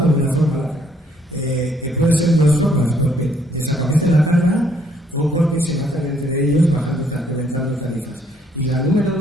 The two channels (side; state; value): both; normal; correlation 0.67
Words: de una forma larga. Que puede ser de 2 formas, porque desaparece la carga o porque se matan entre ellos reventando tarifas. Y la número